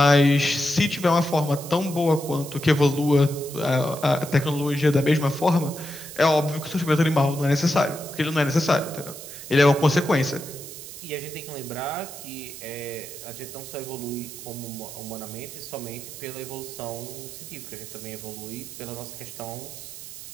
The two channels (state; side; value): noise; right; hiss, 12 dB below the sound